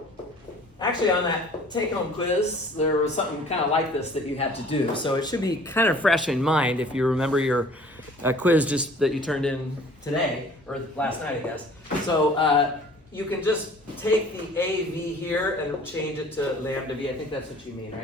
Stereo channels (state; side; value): normal; both; correlation 0.51